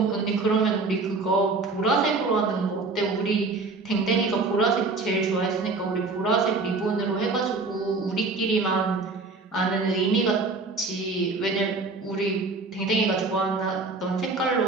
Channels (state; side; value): quieter; left; 3.8 dB